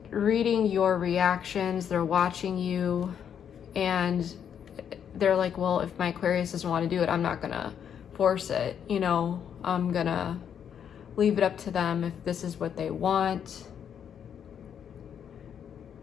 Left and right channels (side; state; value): right; quieter; 8.4 dB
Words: reading your reactions, they're watching you, and they're like, well, if my Aquarius doesn't want to do it, I'm not gonna force it, you know, I'm gonna leave it up to them if this is what they want.